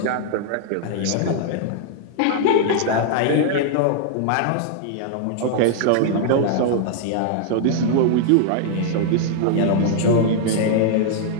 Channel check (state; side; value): different; both; correlation -0.01